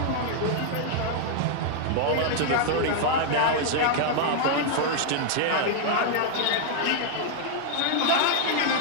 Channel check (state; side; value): different; both; correlation -0.01